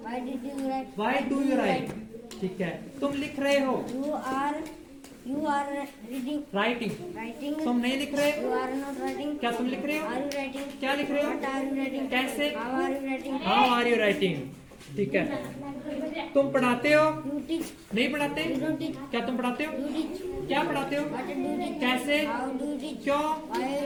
Why did you write? Why do you write? ठीक है। तुम लिख रहे हो, You are reading. Writing. Writing. तुम नहीं लिख रहे, You are not writing. क्या तुम लिख रहे हो? Are you writing? क्या लिख रहे हो? What are you writing? कैसे? How are you writing? How are you writing? ठीक है। तुम पढ़ाते हो, You teach. नहीं पढ़ाते, You don't teach. क्या तुम पढ़ाते हो? You teach. क्या पढ़ाते हो? What do you teach? कैसे? How do you teach? क्यों? Why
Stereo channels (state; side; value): identical; both; correlation 1.00